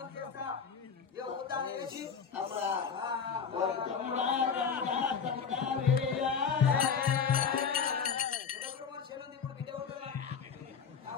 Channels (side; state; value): right; quieter; 6.3 dB